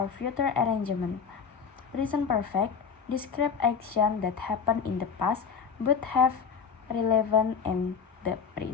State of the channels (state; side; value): quieter; right; 6.2 dB